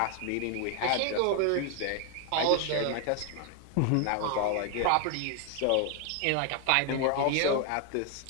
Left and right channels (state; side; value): different; both; correlation 0.00